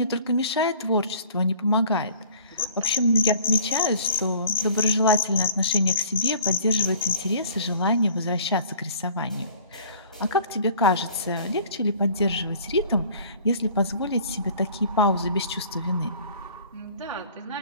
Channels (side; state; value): both; inverted; correlation -0.50